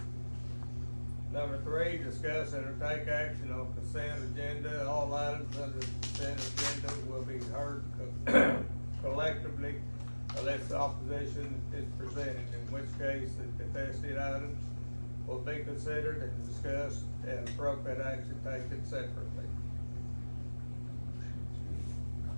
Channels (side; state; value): both; inverted; correlation -1.00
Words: Number 3, discuss and take action on consent agenda. All items under the consent agenda will be heard collectively unless opposition is presented, in which case the contested items will be considered and discussed and appropriate action taken separately.